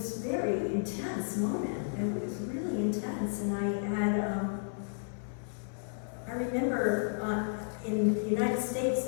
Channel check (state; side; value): silent; right; digital silence